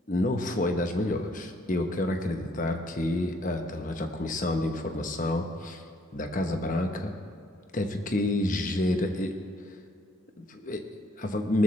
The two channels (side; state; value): both; normal; correlation 0.66